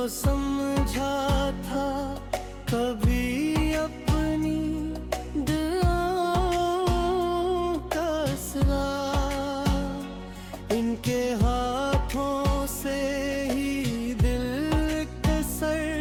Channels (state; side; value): identical; both; correlation 1.00